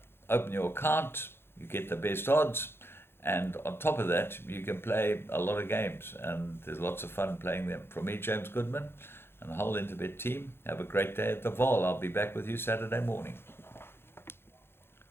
open your account, you get the best odds, and on top of that, you can play a lot of games, and there's lots of fun playing them. From me, James Goodman, and the whole Interbet team, have a great day at the Vaal. I'll be back with you Saturday morning.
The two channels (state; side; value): late; right; 0.11 ms